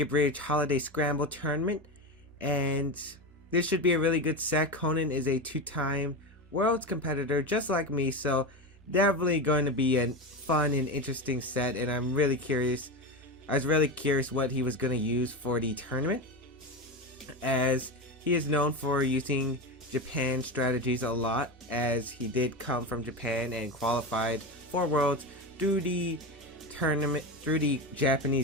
Bridge Holiday Scramble Tournament, and this should be a really good set. Conan is a 2-time Worlds competitor just like me, so definitely going to be a fun and interesting set, and I'm really curious. I was really curious what he was going to use for the tournament, as he is known for using Japan strategies a lot, as he did come from Japan and qualified for Worlds through the tournament, through the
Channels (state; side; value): normal; both; correlation 0.19